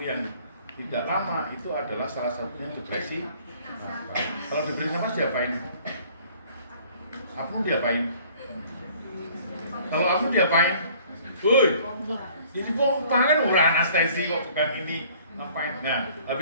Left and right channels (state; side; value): inverted; both; correlation -0.54